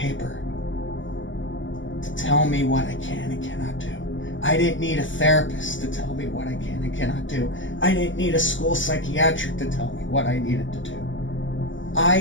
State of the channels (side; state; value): right; late; 0.55 ms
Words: to tell me what I can and cannot do. I didn't need a therapist to tell me what I can and cannot do. I didn't need a school psychiatric to tell me what I needed to do.